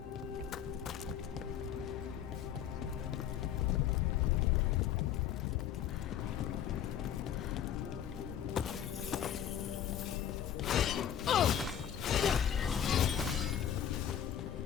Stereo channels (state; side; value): quieter; right; 9.6 dB